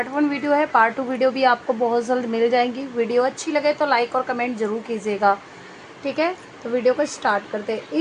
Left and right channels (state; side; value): identical; both; correlation 1.00